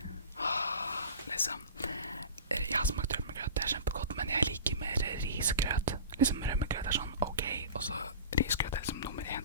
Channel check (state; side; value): inverted; both; correlation -0.36